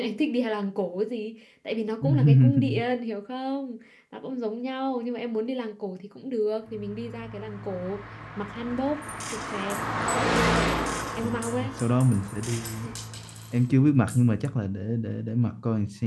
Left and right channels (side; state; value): both; identical; correlation 1.00